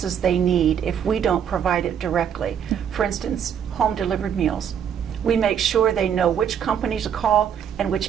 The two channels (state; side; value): quieter; left; 8.4 dB